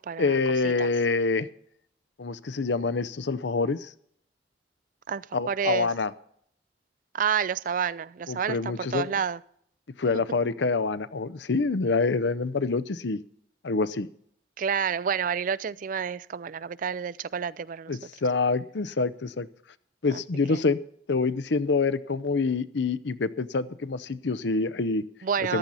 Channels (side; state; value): both; normal; correlation -0.01